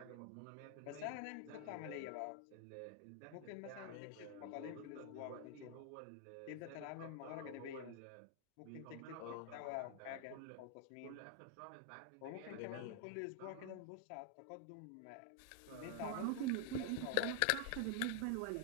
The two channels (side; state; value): both; different; correlation 0.00